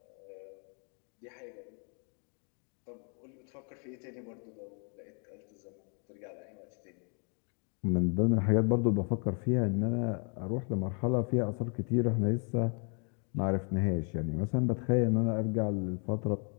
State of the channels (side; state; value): right; quieter; 39.9 dB